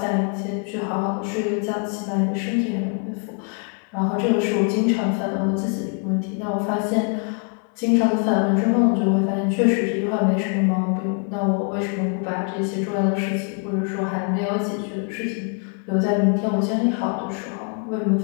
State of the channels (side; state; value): right; quieter; 39.2 dB